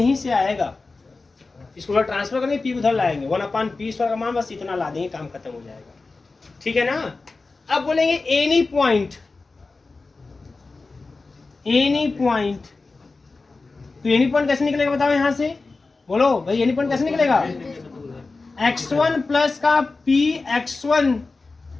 से आएगा। इसको ट्रांसफर करके पी उधर लाएंगे, 1 अपान पी स्क्वायर का मान बस इतना ला देंगे, काम खत्म हो जाएगा। ठीक है ना? अब बोलेंगे एनी पॉइंट, तो एनी पॉइंट कैसे निकलेगा बताओ यहाँ से? बोलो भाई, एनी पॉइंट कैसे निकलेगा? x1 प्लस का P x1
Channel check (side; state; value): right; quieter; 3.8 dB